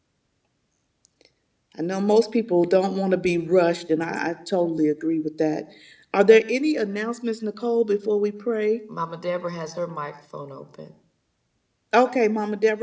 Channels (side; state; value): both; identical; correlation 1.00